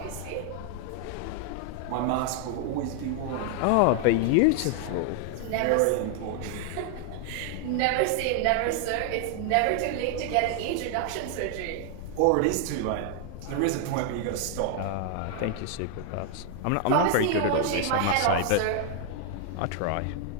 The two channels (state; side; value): different; both; correlation 0.00